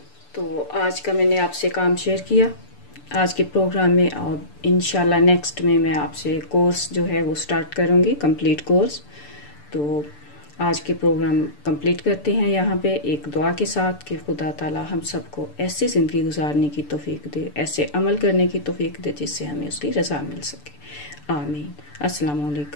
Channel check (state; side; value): late; right; 6.8 ms